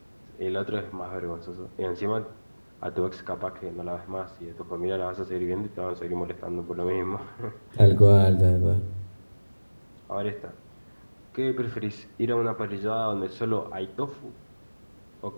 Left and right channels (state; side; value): inverted; both; correlation -1.00